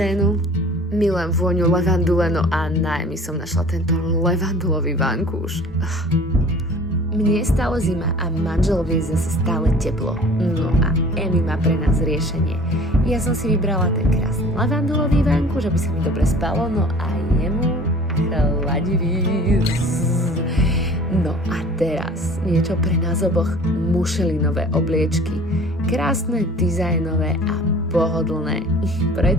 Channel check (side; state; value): both; normal; correlation 0.47